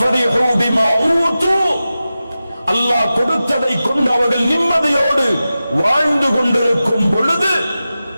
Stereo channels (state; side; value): inverted; both; correlation -0.94